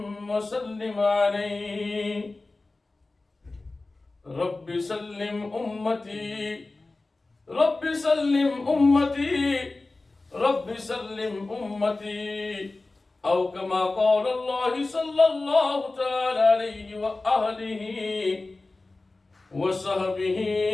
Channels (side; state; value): right; quieter; 3.3 dB